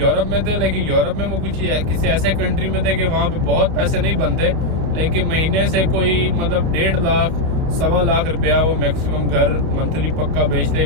में थे। लेकिन यूरोप में वो कुछ किसी ऐसे कंट्री में थे कि वहाँ पे बहुत पैसे नहीं बनते, लेकिन महीने से कोई मतलब 1.5 लाख 1.25 लाख रुपया वो मैक्सिमम घर मंथली पक्का बेचते ही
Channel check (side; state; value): left; late; 31 ms